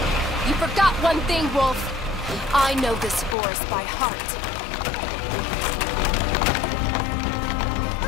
You forgot one thing, Woolfe. I know this forest by heart.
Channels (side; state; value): right; drops out; at 3.4 s